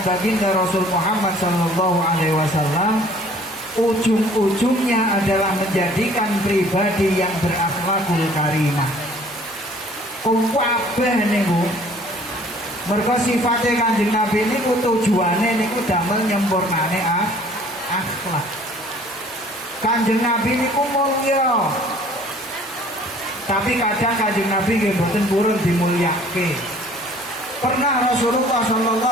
baginda Rasul Muhammad sallallahu alaihi wasallam ujung-ujungnya adalah menjadikan pribadi yang berakhlakul karimah. Kabeh niku mergo sifate Kanjeng Nabi niku tujuane niku damel nyempurnane akhlak. Kanjeng Nabi niku mulya. Tapi kadang Kanjeng Nabi nggih mboten purun dimulyake. Pernah Rasulullah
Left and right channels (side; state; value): both; normal; correlation 0.53